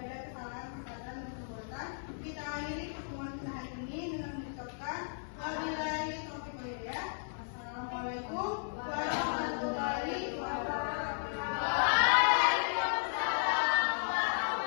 ada kesalahan, kesalahan dan perbuatan. Kita akhiri pertemuan kita hari ini dengan mengucapkan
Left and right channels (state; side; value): silent; right; 55 dB below the other